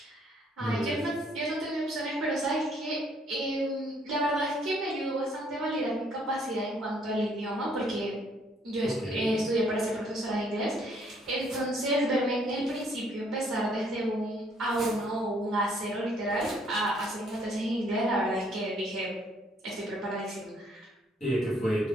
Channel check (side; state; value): both; normal; correlation 0.65